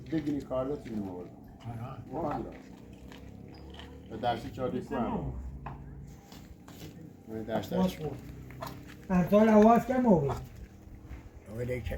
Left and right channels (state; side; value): identical; both; correlation 1.00